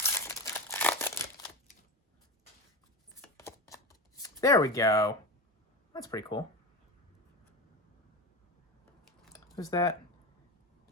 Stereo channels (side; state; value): both; normal; correlation 0.23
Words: There we go. That's pretty cool. Who's that?